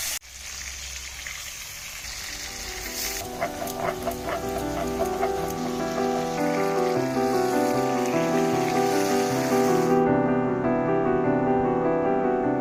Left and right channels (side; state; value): both; identical; correlation 1.00